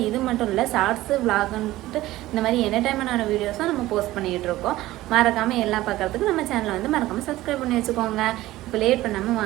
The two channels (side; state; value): left; quieter; 16.6 dB